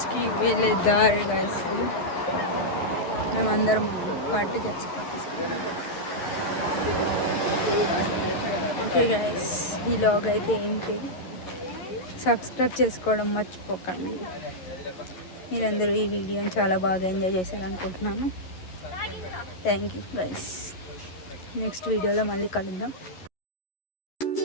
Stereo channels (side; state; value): right; late; 11 ms